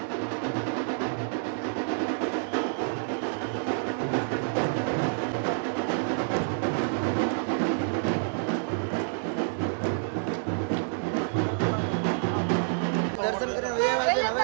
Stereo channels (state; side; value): silent; left; 59 dB below the other